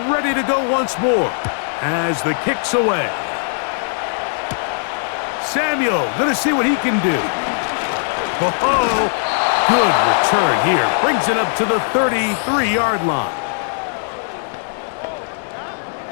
ready to go once more as the kick's away. Samuel gonna see what he can do. Oh, good return here. Brings it up to the 33-yard line.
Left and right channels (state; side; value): silent; right; 67 dB below the other